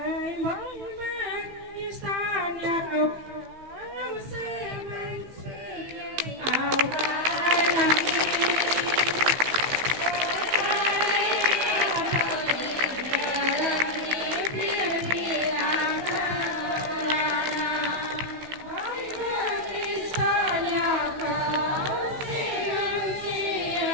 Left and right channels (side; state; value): left; late; 15 ms